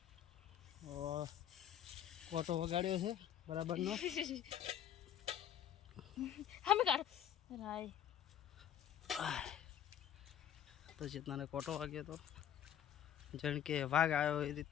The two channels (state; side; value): quieter; right; 10.0 dB